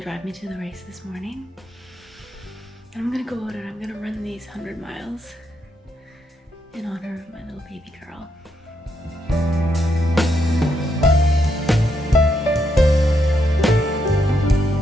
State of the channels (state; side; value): normal; both; correlation 0.79